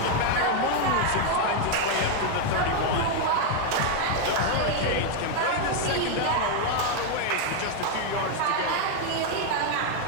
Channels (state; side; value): different; both; correlation 0.01